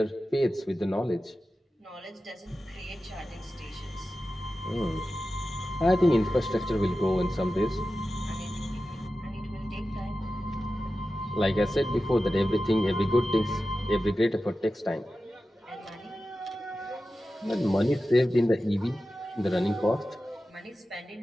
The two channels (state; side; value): normal; both; correlation 0.93